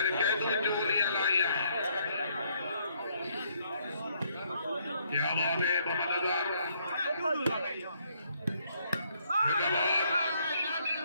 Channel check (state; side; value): inverted; both; correlation -0.69